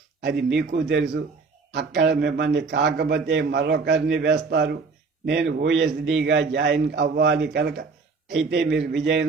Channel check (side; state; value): left; quieter; 4.5 dB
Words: అది మీకు తెలుసు. అక్కడ మిమ్మల్ని కాకపోతే మరొకరిని వేస్తారు. నేను ఓఎస్డీగా జాయిన్ అవ్వాలి కనుక. అయితే మీరు